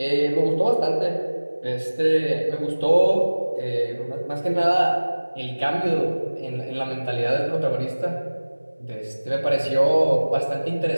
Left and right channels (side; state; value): both; inverted; correlation -1.00